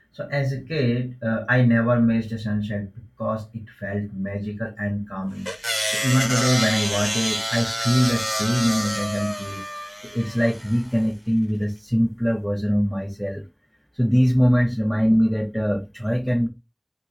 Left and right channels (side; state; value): both; identical; correlation 1.00